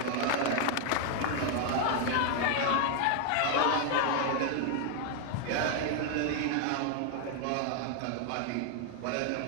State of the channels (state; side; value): different; both; correlation 0.00